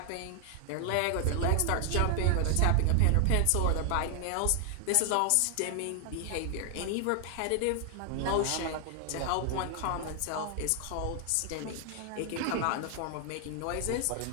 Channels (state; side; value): different; both; correlation 0.00